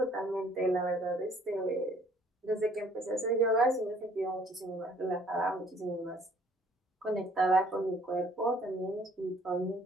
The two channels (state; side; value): normal; both; correlation 0.59